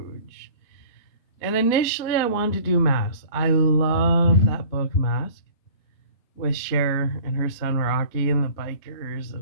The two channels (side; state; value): right; late; 4.3 ms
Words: And initially, I wanted to do Mask. I love that book, Mask, with Cher and her son Rocky and the bikers,